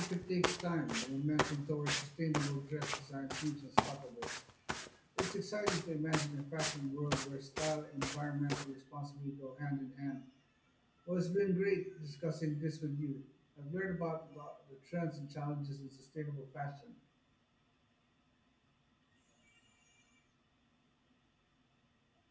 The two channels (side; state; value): both; identical; correlation 1.00